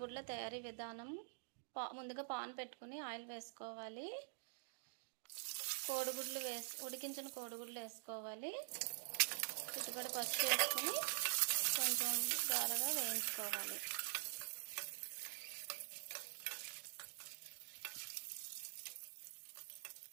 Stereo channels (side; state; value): left; silent; digital silence